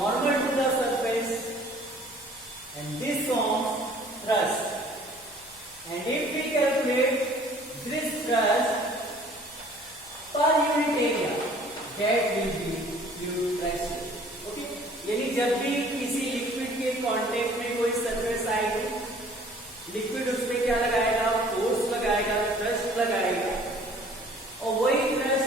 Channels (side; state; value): left; noise; hum, 27 dB below the sound